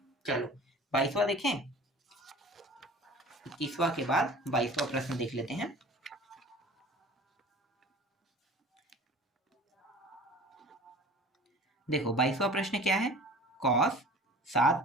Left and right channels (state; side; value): normal; both; correlation 0.44